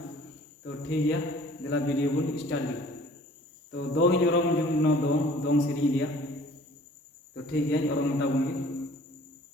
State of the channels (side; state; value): both; normal; correlation 0.52